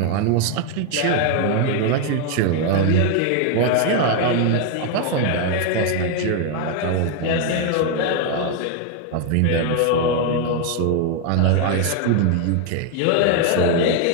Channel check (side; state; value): both; different; correlation 0.01